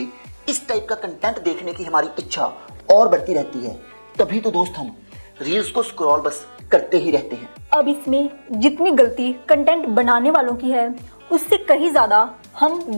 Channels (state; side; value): inverted; both; correlation -1.00